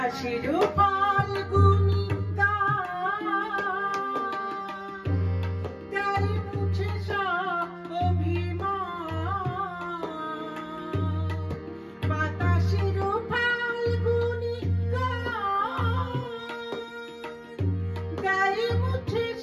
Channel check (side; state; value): both; identical; correlation 1.00